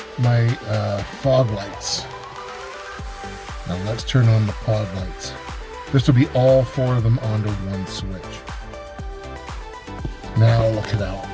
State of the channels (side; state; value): both; identical; correlation 1.00